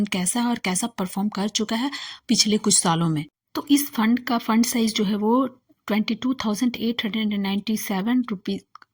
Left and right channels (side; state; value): both; identical; correlation 1.00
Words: कैसा है और कैसा परफॉर्म कर चुका है पिछले कुछ सालों में। तो इस फंड का फंड साइज जो है वो 22,897 रुपीज